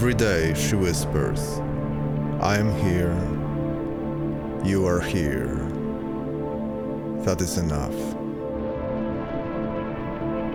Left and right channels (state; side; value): identical; both; correlation 1.00